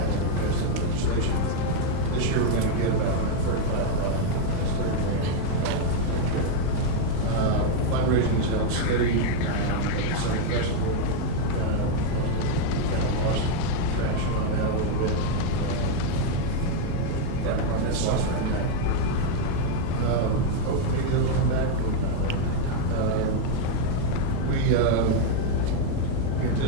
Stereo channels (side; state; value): both; different; correlation 0.00